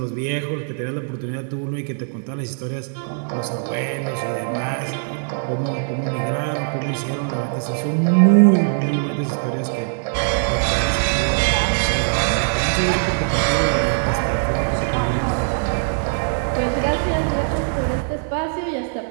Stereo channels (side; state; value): left; silent; digital silence